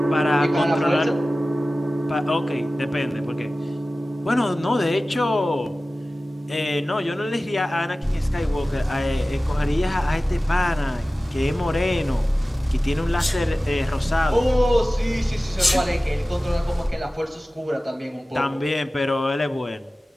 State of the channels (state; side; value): normal; both; correlation 0.96